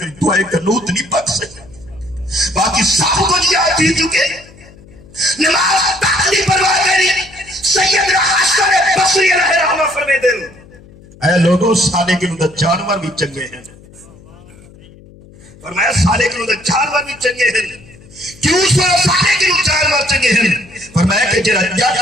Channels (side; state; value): left; noise; hum, 23 dB below the sound